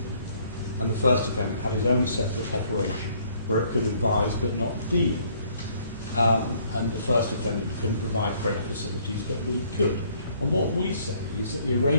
And the first defendant had his own separate operation where it could advise but not deal. And the first defendant couldn't provide credit facilities, but we could. And what we say is that the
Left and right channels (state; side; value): inverted; both; correlation -0.63